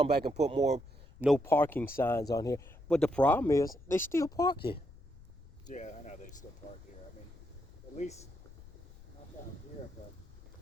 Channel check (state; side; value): noise; left; rumble, 20 dB below the sound